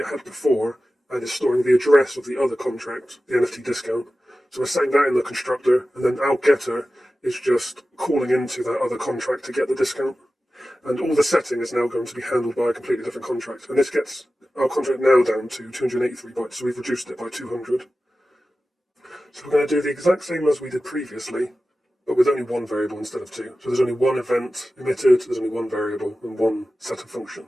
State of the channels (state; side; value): normal; both; correlation 0.95